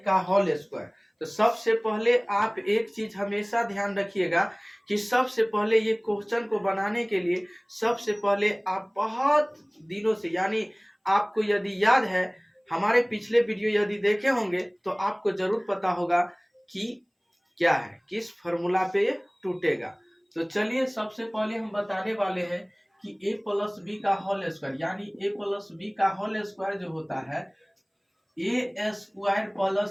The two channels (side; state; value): both; identical; correlation 1.00